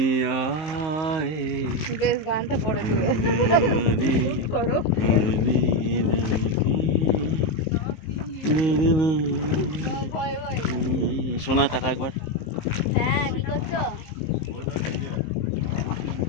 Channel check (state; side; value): late; right; 19 ms